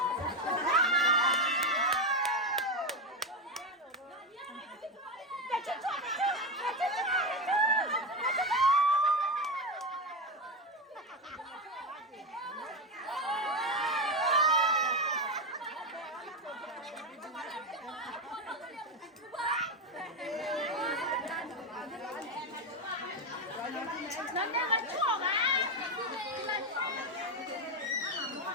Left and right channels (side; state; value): both; normal; correlation 0.12